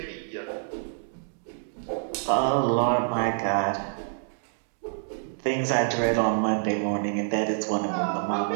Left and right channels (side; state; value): left; silent; digital silence